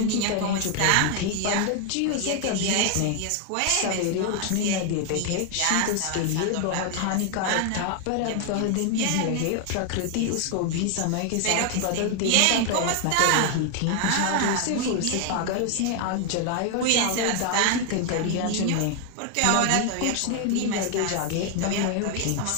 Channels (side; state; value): both; different; correlation 0.00